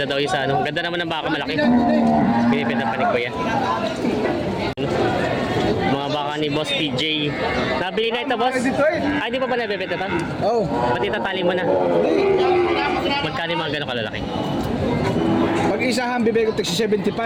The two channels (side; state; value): both; identical; correlation 1.00